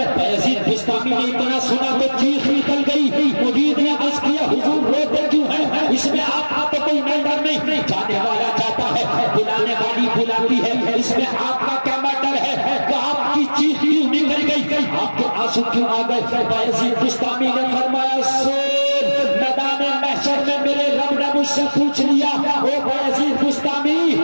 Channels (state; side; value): inverted; both; correlation -1.00